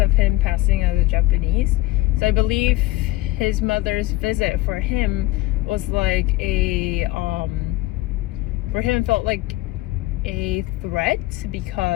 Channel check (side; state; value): right; quieter; 17.7 dB